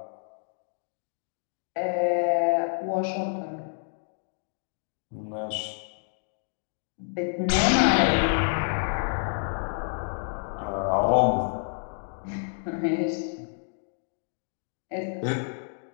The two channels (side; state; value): right; silent; digital silence